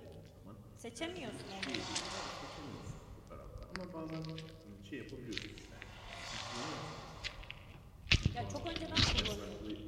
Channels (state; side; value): identical; both; correlation 1.00